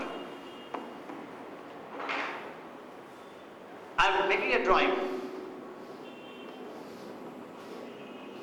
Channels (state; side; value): identical; both; correlation 1.00